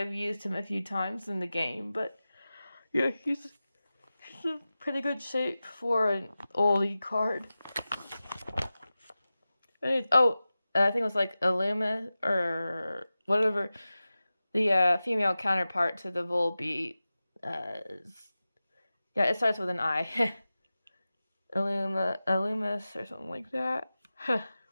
used him a few times in the game. But yeah, he's in pretty good shape for an oldie card. I think it was like Illuma or whatever the female counterpart to the Volbeat. Yeah, it starts with an I. Illumis or something like that.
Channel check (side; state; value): both; inverted; correlation -0.95